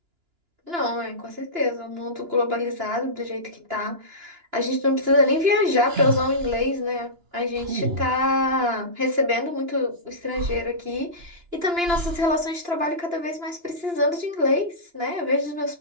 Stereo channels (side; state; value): left; late; 2.9 ms